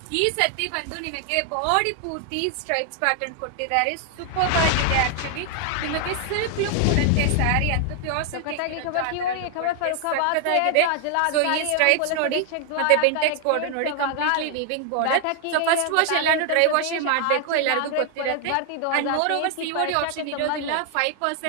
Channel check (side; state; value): both; different; correlation 0.00